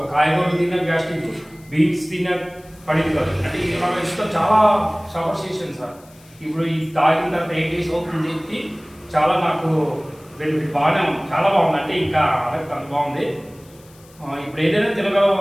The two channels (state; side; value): noise; left; hiss, 27 dB below the sound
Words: కాయగూరలు తిన్నా గ్యాస్ట్రిక్, బీన్స్ తిన్నా పడింది కాదు. అంటే నాకు ఇష్టం చాలా సఫర్ చేశాను సార్. ఇప్పుడు ఈ తాగిన తర్వాత 8 days అవుతుంది చెప్పి చాలా నాకు బెనిఫిట్ బాగానే ఉంది, చాలా బాగుంది. అంటే ఇంకా అంత బాగుంది. ఇప్పుడు ఏదైనా తినగల